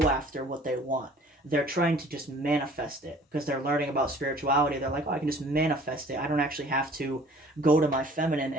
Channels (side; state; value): both; normal; correlation 0.51